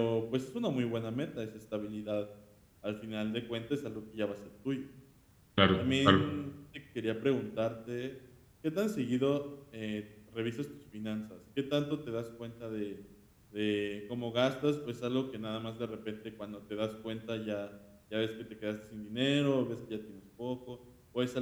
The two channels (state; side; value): identical; both; correlation 1.00